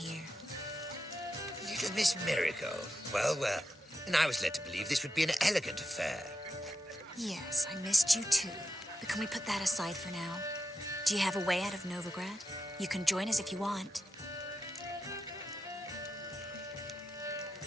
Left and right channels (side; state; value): both; normal; correlation 0.88